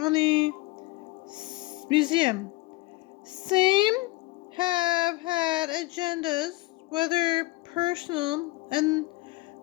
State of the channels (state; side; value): quieter; right; 21.3 dB